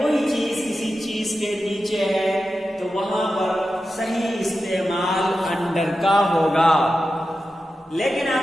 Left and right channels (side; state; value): both; normal; correlation 0.91